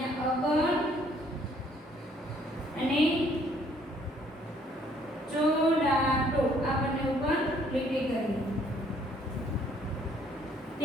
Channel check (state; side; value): normal; both; correlation 0.63